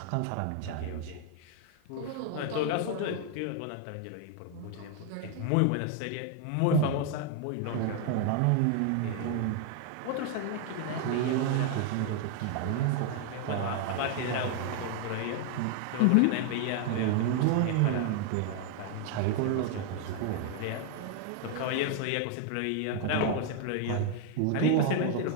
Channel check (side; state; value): both; different; correlation 0.00